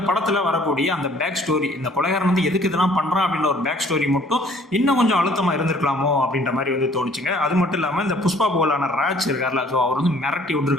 படத்தில் வரக்கூடிய அந்த பேக் ஸ்டோரி, இந்த கொலைகாரன் வந்து எதுக்கு இதெல்லாம் பண்ணுறான் அப்படின்ற ஒரு பேக் ஸ்டோரி மட்டும் இன்னும் கொஞ்சம் அழுத்தமாக இருந்திருக்கலாமோ அப்படின்ற மாதிரி வந்து தோணுச்சுங்க. அது மட்டும் இல்லாமல் இந்த புஷ்பா போலான ராஜ் இருக்கார்ல, ஸோ அவர் வந்து மிரட்டி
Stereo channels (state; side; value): normal; both; correlation 0.57